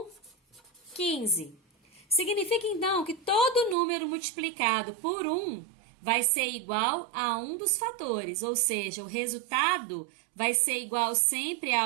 15. Significa, então, que todo número multiplicado por 1 vai ser igual a um dos fatores, ou seja, o resultado vai ser igual sempre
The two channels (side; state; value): left; drops out; at 3.8 s